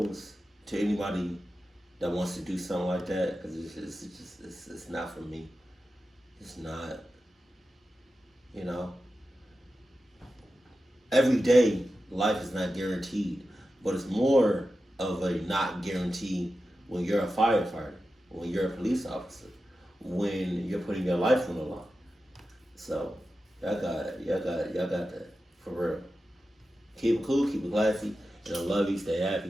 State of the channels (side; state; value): both; normal; correlation 0.92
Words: to anybody that wants to do something like that, because it's not for me. It's not, you know. Every day, life is not guaranteed, but it's more of a not guarantee when you're a firefighter, when you're a police officer, when you're putting your life on the line. So, y'all got that, for real. Keep it cool, keep it classy, and I love you, stay